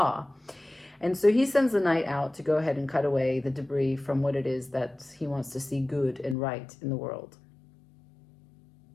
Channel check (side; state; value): right; drops out; at 6.4 s